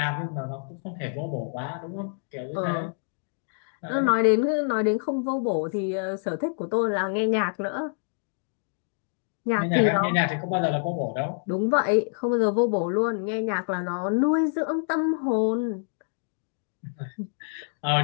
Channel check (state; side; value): silent; right; digital silence